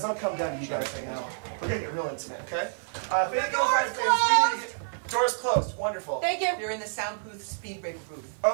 I'm going to come down to you guys right now. We're going to get real intimate, okay? If they get into 5 things, we need to get... Doors closed. Wonderful. Thank you. You're in the soundproof speed break booth.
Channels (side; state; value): left; silent; 59 dB below the other